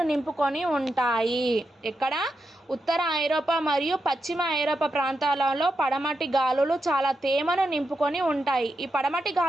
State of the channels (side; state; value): both; normal; correlation 0.86